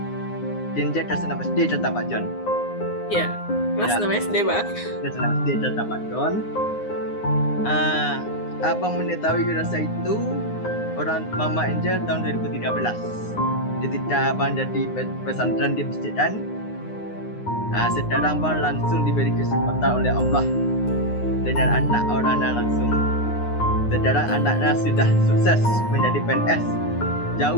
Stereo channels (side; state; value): right; late; 9.7 ms